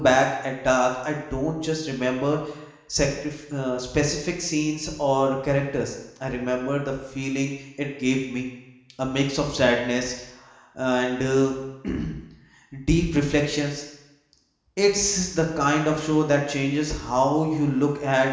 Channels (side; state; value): both; identical; correlation 1.00